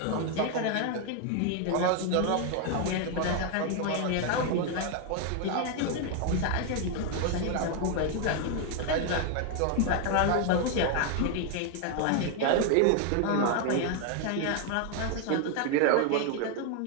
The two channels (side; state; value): both; different; correlation 0.00